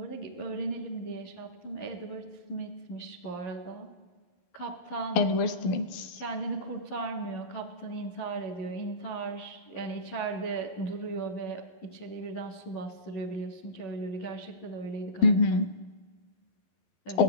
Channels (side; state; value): right; late; 11 ms